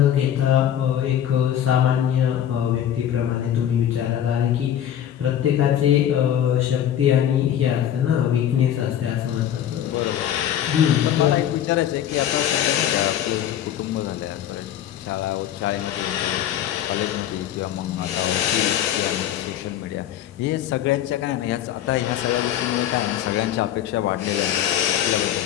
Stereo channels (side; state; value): right; quieter; 10.6 dB